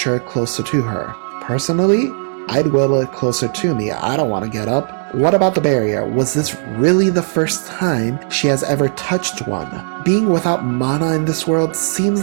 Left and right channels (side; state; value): left; silent; digital silence